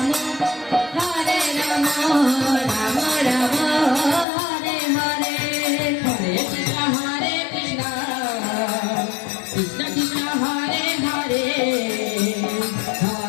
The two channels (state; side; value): drops out; right; at 4.2 s